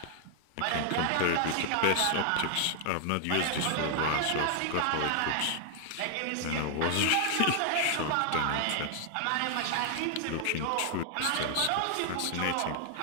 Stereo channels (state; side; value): different; both; correlation 0.00